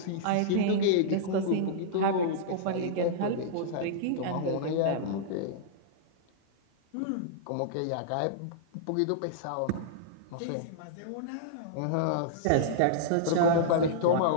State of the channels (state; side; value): different; both; correlation -0.02